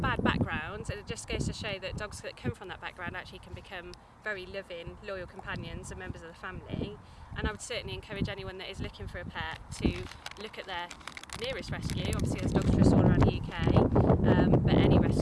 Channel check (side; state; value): both; identical; correlation 1.00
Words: background, and it just goes to show that dogs that come from that background actually can become very loving, loyal companions and members of the family. And I would certainly encourage anyone that is looking for a pet to look at their nearest rescue. Obviously there's Dogs Trust all around the UK, but any